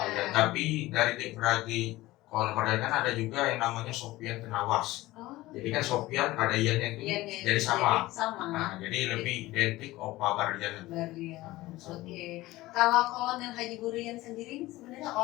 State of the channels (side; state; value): right; quieter; 18.2 dB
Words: Tapi dari adik beradik Kolonel Burlian kan ada juga yang namanya Sofian Tenawas. Oh. Jadi kan Sofian ada iannya itu jadi sama. Nah, jadi lebih identik Opa Burlian. Oke. Kalau Kolonel Haji Burlian sendiri sebenarnya